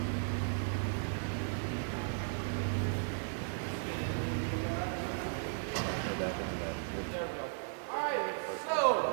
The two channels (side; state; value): left; silent; digital silence